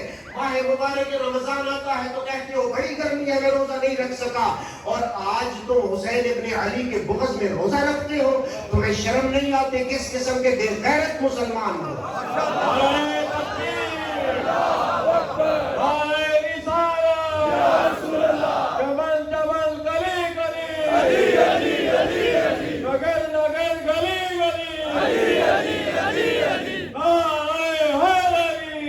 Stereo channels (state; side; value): identical; both; correlation 1.00